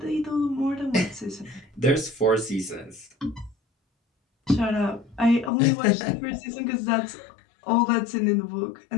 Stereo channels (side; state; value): right; drops out; at 5.5 s